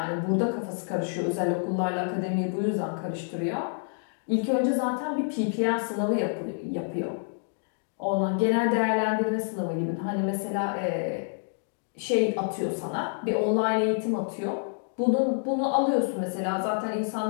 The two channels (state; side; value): silent; right; digital silence